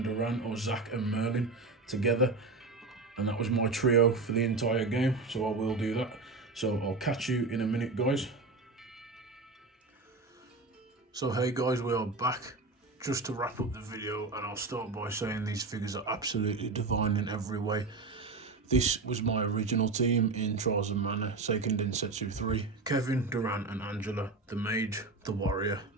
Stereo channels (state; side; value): quieter; left; 3.8 dB